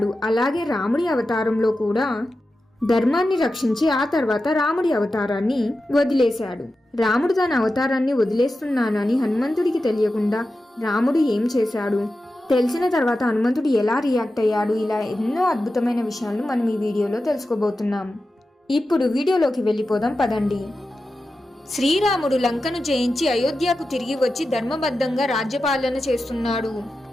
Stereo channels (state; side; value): normal; both; correlation 0.92